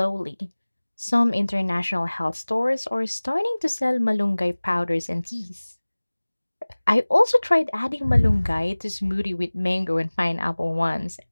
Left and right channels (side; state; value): both; inverted; correlation -1.00